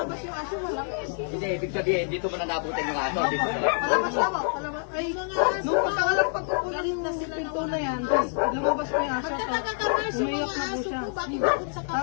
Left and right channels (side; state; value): right; silent; 60 dB below the other